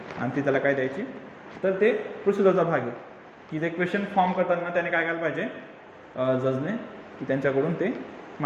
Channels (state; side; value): identical; both; correlation 1.00